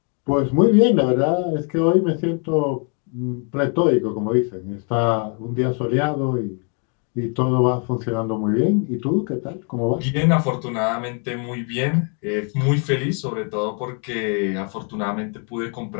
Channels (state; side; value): quieter; right; 39.6 dB